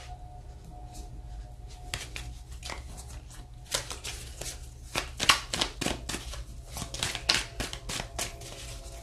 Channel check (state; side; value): identical; both; correlation 1.00